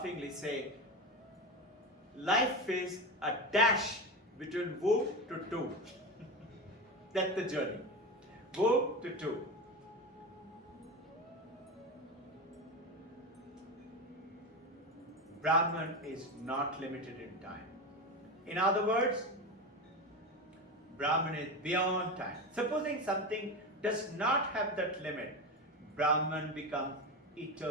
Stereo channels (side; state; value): both; normal; correlation 0.21